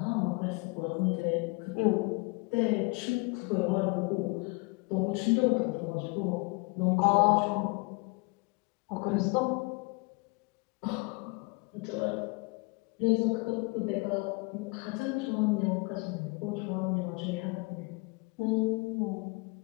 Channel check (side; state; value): right; quieter; 28.1 dB